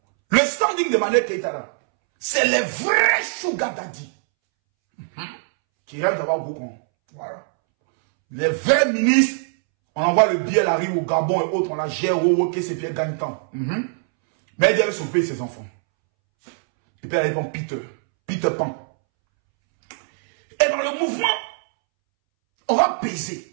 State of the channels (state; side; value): silent; left; 64 dB below the other